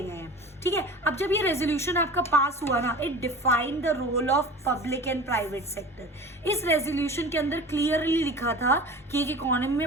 हैं, ठीक है। अब जब ये रेजोल्यूशन आपका पास हुआ ना, it defined the role of public and private sector. इस रेजोल्यूशन के अंदर क्लियरली लिखा था कि एक इकोनॉमी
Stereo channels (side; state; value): both; normal; correlation 0.37